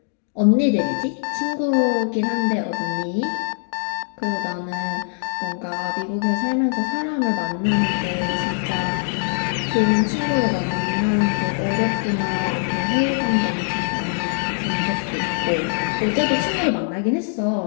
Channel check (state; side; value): silent; right; 64 dB below the other